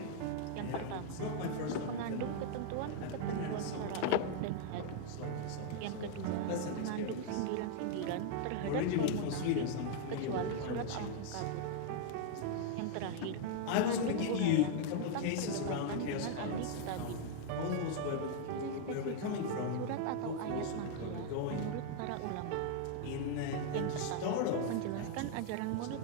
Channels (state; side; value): different; both; correlation 0.00